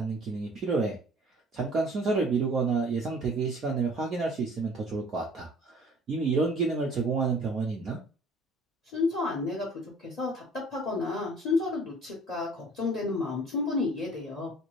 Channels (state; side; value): normal; both; correlation 0.51